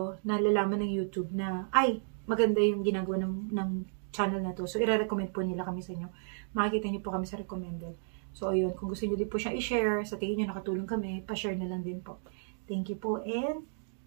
nalalaman ng YouTube na, maganda yung ginagawa ng channel na to. So, i-recommend po nila kami sa inyo. Makikita niyo po kami sa recommended. So, ayun. Kung gusto niyo din po siya i-share, sa tingin niyo nakatulong kami, pa-share na lang din po. Thank you po. And,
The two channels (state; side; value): silent; left; digital silence